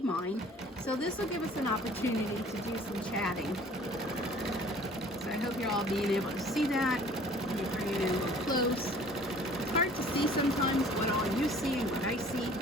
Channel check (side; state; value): both; normal; correlation 0.51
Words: So this will give us an opportunity to do some chatting. So I hope you're all being able to see that. Let me bring it in a little close. It's hard to see sometimes what all you see and what I see.